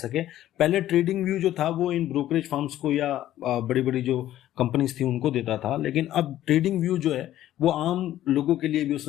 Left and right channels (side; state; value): right; quieter; 13.1 dB